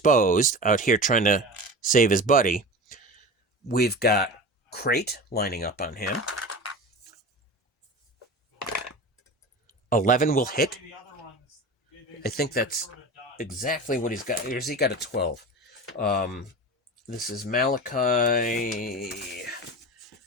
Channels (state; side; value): normal; both; correlation 0.31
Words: out here trying to save his buddy, we've got Crate lining up on him. 11 will hit. I think that's exactly what he's got. Here's he got a 12. This is Malachi.